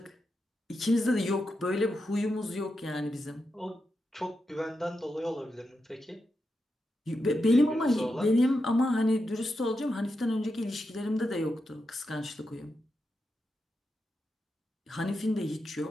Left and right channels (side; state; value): both; normal; correlation 0.87